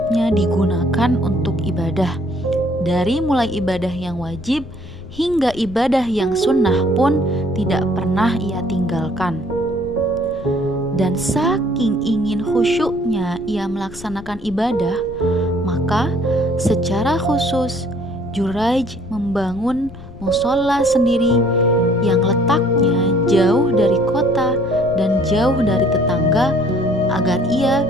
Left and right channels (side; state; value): left; noise; rumble, 17 dB below the sound